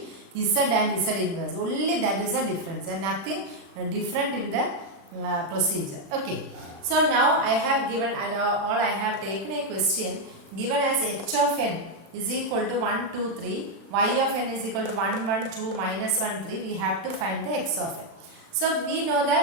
Z and Z inverse. Only that is the difference and nothing different in the procedure. Okay. So now I have given I have taken a question given as h of n is equal to 1, 2, 3, y of n is equal to 1, 1, 2, minus 1, 3. We have to find the x of n. So we know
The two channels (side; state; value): left; late; 36 ms